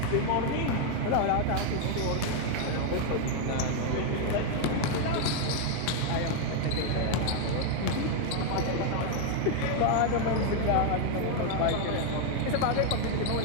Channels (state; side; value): different; both; correlation 0.00